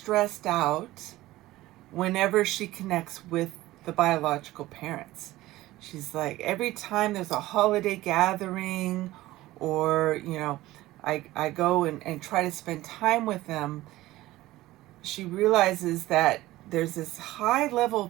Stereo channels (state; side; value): quieter; left; 17.0 dB